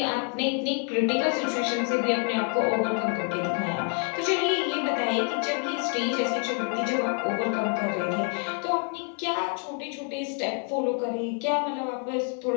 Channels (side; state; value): right; quieter; 39.9 dB